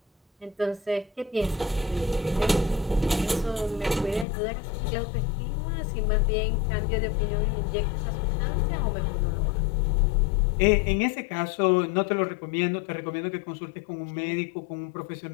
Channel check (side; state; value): right; drops out; at 4.2 s